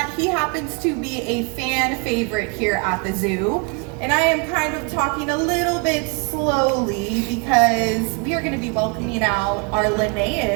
he happens to be a fan favorite here at the zoo. And I am kind of talking a little bit slowly because we are going to be welcoming out our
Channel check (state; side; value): quieter; left; 31.8 dB